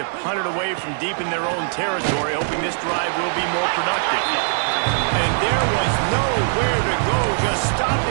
punt it away from deep in their own territory, hoping this drive will be more productive. And there was nowhere to go, just stopped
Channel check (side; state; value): left; silent; digital silence